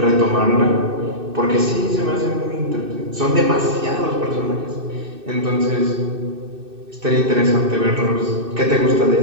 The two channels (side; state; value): left; late; 2.6 ms